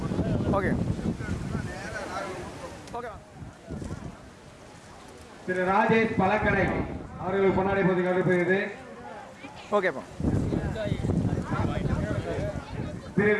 ஓகே ஓகே திரு ராஜேஷ் பழக்கடை அவர்களுக்கு பொன்னாடை போட்டி கௌரவிக்கிறது. ஓகேப்பா திரு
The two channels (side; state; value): both; identical; correlation 1.00